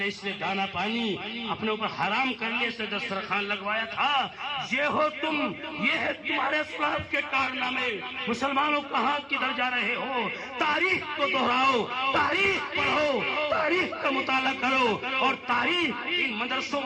اس لیے دانا پانی اپنے اوپر حرام کر لیے سے دسترخوان لگوایا تھا۔ یہ ہو تم، یہ ہے تمہارے اسلاف کے کارنامے۔ مسلمانوں کہاں کدھر جا رہے ہو؟ تاریخ کو دہراؤ، تاریخ پڑھو، تاریخ کا مطالعہ کرو، اور تاریخ ان مدرسوں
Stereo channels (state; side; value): identical; both; correlation 1.00